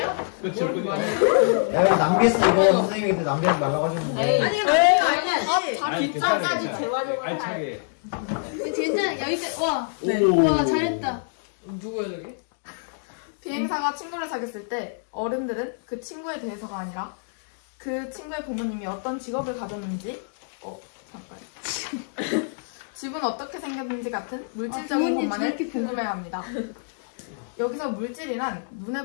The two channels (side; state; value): right; silent; digital silence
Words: 그쵸. 야, 왜 남겼어, 이거. 선생님한테 남기지 말라고 하셨는데. 아니, 뒷장까지 재활용을 할. 알차게. 괜찮아. 여기까지. 와. 네. 와, 잘했다. 누구야 저기? 비행사가 친구를 사귀었을 때 어른들은 그 친구에 대해서가 아니라 그 친구의 부모님이 어떤 직업을 가졌는지 집은 어떻게 생겼는지 같은 물질적인 것만을 궁금해합니다. 여기서 물질이란 눈에